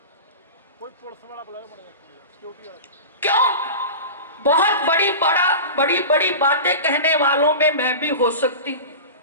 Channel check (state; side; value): inverted; both; correlation -0.31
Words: क्यों? बहुत बड़ी बड़ी बातें कहने वालों में मैं भी हो सकती हूं,